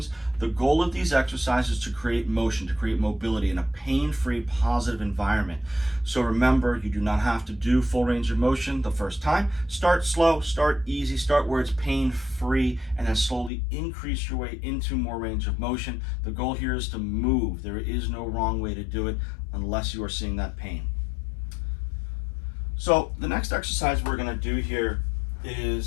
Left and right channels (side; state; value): right; drops out; at 13.5 s